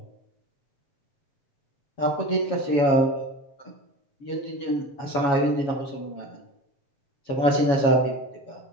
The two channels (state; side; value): late; right; 7.2 ms